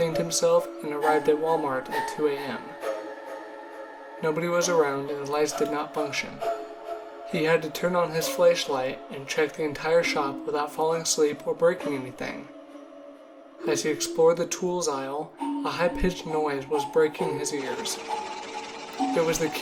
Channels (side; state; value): both; identical; correlation 1.00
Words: himself, and arrived at Walmart at 2 a.m. Nobody was around and the lights did not function. He had to turn on his flashlight and check the entire shop without falling asleep or breaking anything. As he explored the tools aisle, a high-pitched noise was breaking his ears. It was the